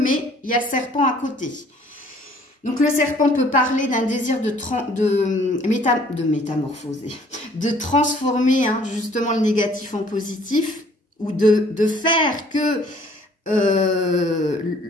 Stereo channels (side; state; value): both; normal; correlation 0.57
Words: il y a le serpent à côté. Donc, le serpent peut parler d'un désir de métamorphoser, de transformer hein, justement le négatif en positif, ou de faire que